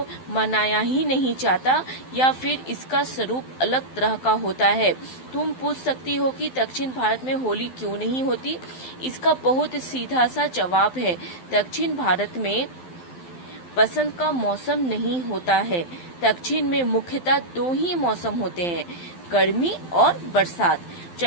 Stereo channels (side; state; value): right; late; 12 ms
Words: मनाया ही नहीं जाता या फिर इसका स्वरूप अलग तरह का होता है। तुम पूछ सकती हो कि दक्षिण भारत में होली क्यों नहीं होती? इसका बहुत सीधा सा जवाब है। दक्षिण भारत में बसंत का मौसम नहीं होता है। दक्षिण में मुख्यतः दो ही मौसम होते हैं, गर्मी और बरसात।